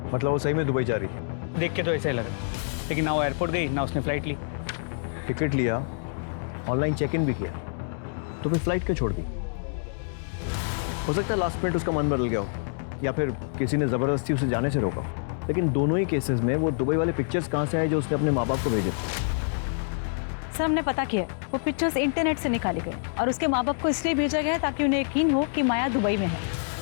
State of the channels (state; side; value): silent; right; digital silence